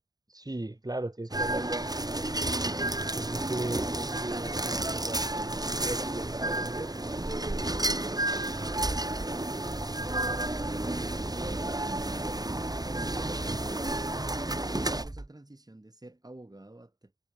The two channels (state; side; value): late; left; 0.19 ms